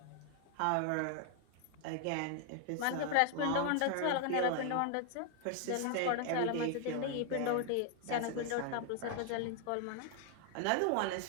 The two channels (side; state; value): both; different; correlation 0.00